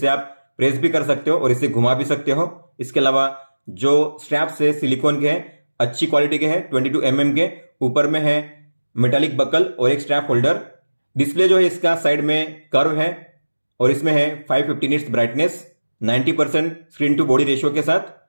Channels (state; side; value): inverted; both; correlation -1.00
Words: आप प्रेस भी कर सकते हो और इसे घुमा भी सकते हो। इसके अलावा जो स्ट्रैप्स है सिलिकॉन के हैं, अच्छी क्वालिटी के हैं, 22 mm के। ऊपर में है मेटालिक बकल और एक स्ट्रैप होल्डर। डिस्प्ले जो है इसका साइड में कर्व है और इसमें है 550 nits brightness, 90% screen to body ratio के साथ।